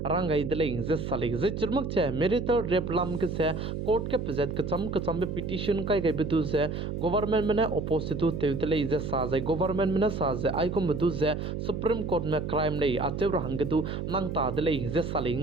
rangai dele ze sale ze chirmak che marital rape lam ge se court ke pzet ke cham be petition kai ge bedu ze government me ne opposite tu te dele ze sa ze government me na sa ze ai madu ze Supreme Court me crime lei atew hangdu nang ta de lei ze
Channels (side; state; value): right; noise; hum, 4 dB below the sound